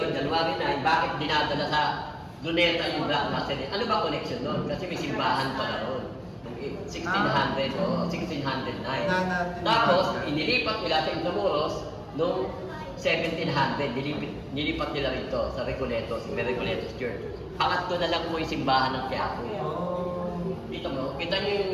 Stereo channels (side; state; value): both; identical; correlation 1.00